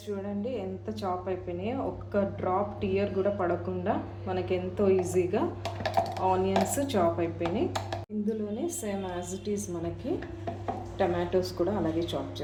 చూడండి ఎంత చాప్ అయిపోయినాయో. ఒక్క డ్రాప్ టీయర్ కూడా పడకుండా మనకి ఎంతో ఈజీగా ఆనియన్స్ చాప్ అయిపోయినాయి. ఇందులోనే సేమ్ యాజ్ ఇట్ ఈజ్ మనకి టమాటోస్ కూడా అలాగే చాప్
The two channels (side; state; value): both; identical; correlation 1.00